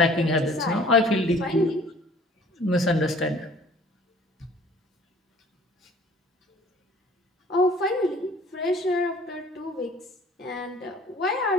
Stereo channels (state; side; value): normal; both; correlation 0.52